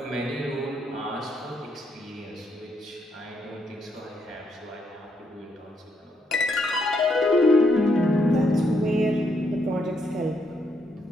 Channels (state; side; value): normal; both; correlation 0.76